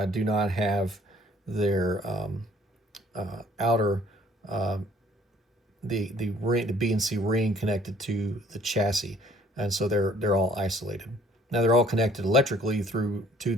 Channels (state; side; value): normal; both; correlation 0.59